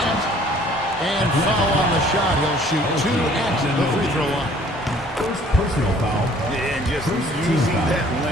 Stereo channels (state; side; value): normal; both; correlation 0.56